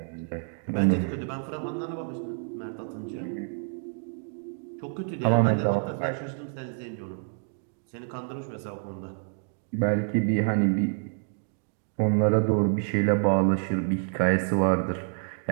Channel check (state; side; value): silent; left; 59 dB below the other